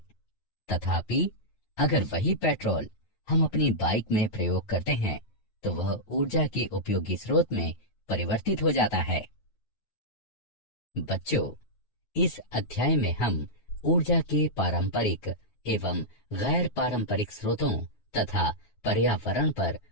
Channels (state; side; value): late; right; 9.3 ms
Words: तथापि अगर वही पेट्रोल हम अपनी बाइक में प्रयोग करते हैं तो वह ऊर्जा के उपयोगी स्रोत में परिवर्तित हो जाता है। बच्चों, इस अध्याय में हम ऊर्जा के पारंपरिक एवं गैर पारंपरिक स्रोतों तथा पर्यावरण पर